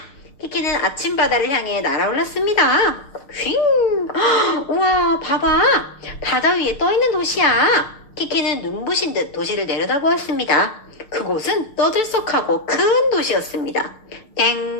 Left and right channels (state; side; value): late; right; 6.5 ms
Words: 키키는 아침 바다를 향해 날아올랐습니다. 휘! 우와, 봐봐. 바다 위에 떠있는 도시야. 키키는 눈부신 듯 도시를 내려다보았습니다. 그곳은 떠들썩하고 큰 도시였습니다.